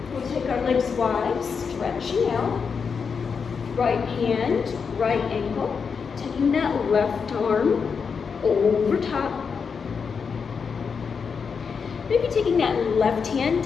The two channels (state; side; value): quieter; right; 5.9 dB